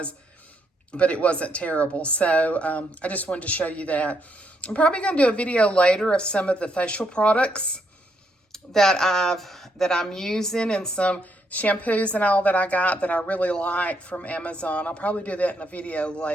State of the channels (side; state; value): both; normal; correlation 0.75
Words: but it wasn't terrible. So I just wanted to show you that. I'm probably going to do a video later of some of the facial products that I'm using, and some shampoos and all that I got that I really like from Amazon. I'll probably do that in a video